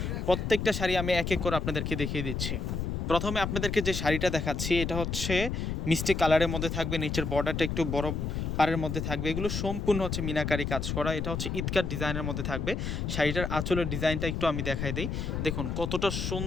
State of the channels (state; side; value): noise; left; rumble, 2 dB below the sound